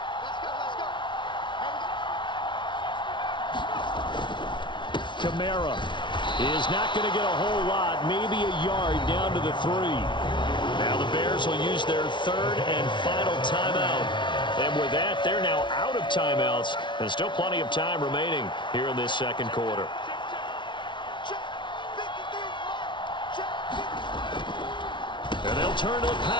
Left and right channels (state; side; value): late; right; 0.24 ms